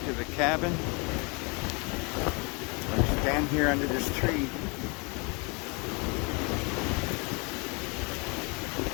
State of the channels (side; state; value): right; quieter; 31.2 dB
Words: to the cabin or stand here under this tree.